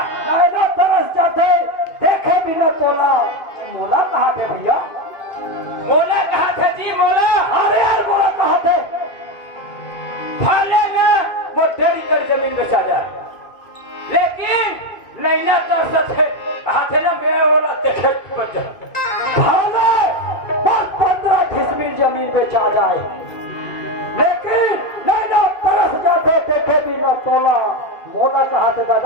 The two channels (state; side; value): late; right; 2.5 ms